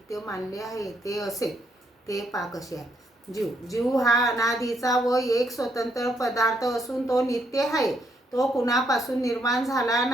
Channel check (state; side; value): normal; both; correlation 0.74